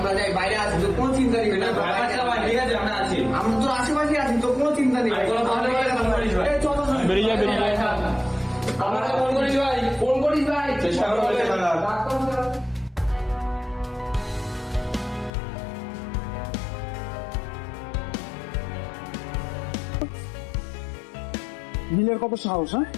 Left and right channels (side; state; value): right; drops out; at 15.3 s